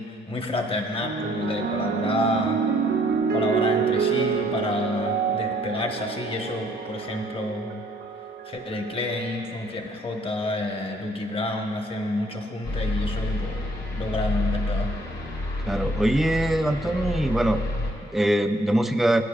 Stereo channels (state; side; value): normal; both; correlation 0.65